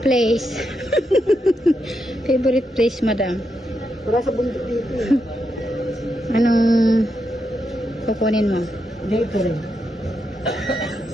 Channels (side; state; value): both; normal; correlation 0.83